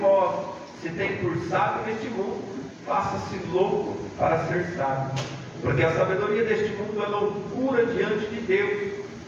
vós se tem por sábio neste mundo, faça-se louco para ser sábio. Porque a sabedoria deste mundo é loucura diante de Deus,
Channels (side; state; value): both; identical; correlation 1.00